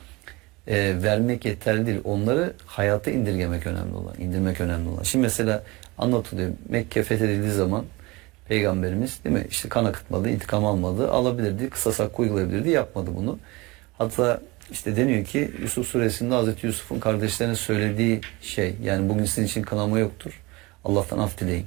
vermek yeterli değil. Onları hayata indirgemek önemli olan, indirmek önemli olan. Şimdi mesela anlatılıyor. Mekke fethedildiği zaman Peygamberimiz, değil mi, İşte kan akıtmadı, intikam almadı, alabilirdi, kısas hakkı uygulayabilirdi, yapmadı bunu. Hatta işte deniyor ki Yusuf suresinde Hazreti Yusuf'un kardeşlerine söylediği şey, yani bugün sizin için kınama yoktur, Allah'tan af dileyin.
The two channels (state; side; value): quieter; left; 23.5 dB